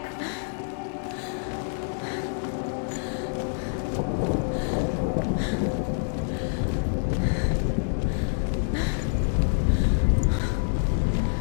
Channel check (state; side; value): silent; right; digital silence